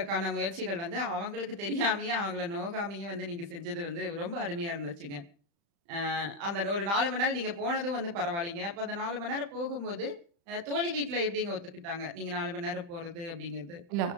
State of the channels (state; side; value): late; left; 35 ms